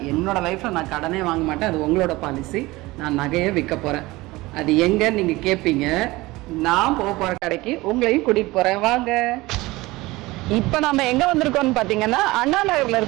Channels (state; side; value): quieter; left; 20.4 dB